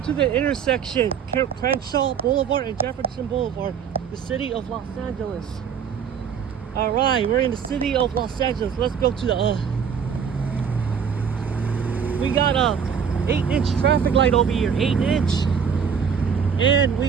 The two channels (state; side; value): quieter; left; 7.2 dB